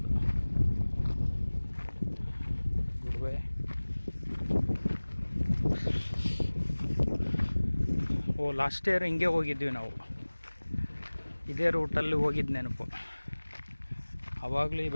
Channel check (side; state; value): both; inverted; correlation -1.00